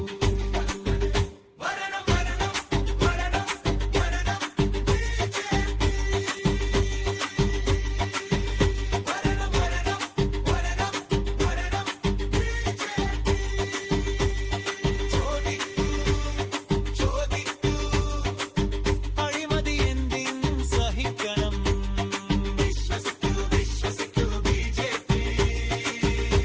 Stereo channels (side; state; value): both; identical; correlation 1.00